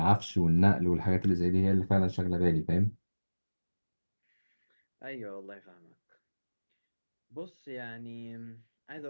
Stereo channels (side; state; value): both; inverted; correlation -1.00